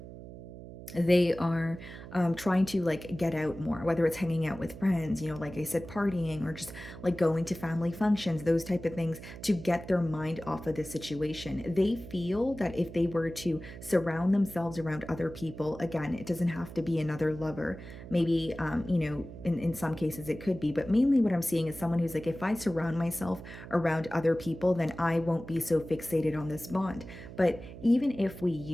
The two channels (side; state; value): right; noise; hum, 13 dB below the sound